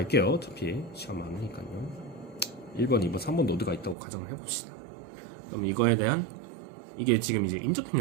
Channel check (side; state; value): left; drops out; at 4.0 s